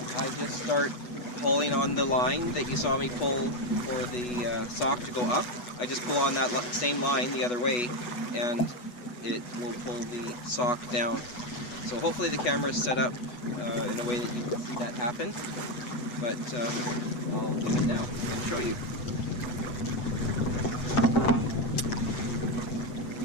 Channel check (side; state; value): right; late; 8.2 ms